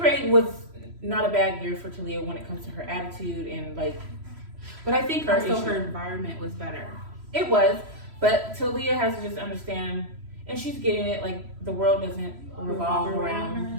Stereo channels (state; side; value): late; left; 3.1 ms